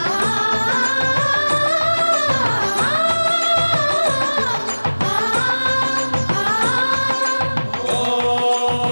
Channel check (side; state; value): both; inverted; correlation -1.00